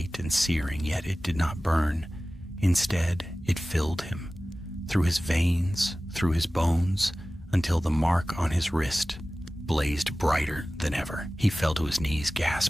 and searing, yet it did not burn. Instead, it filled him, through his veins, through his bones, until the mark on his wrist blazed brighter than ever. He fell to his knees,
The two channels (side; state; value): both; normal; correlation 0.97